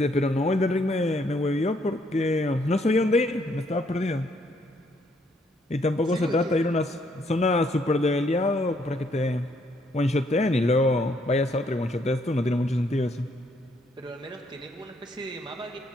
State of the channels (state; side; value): normal; both; correlation 0.70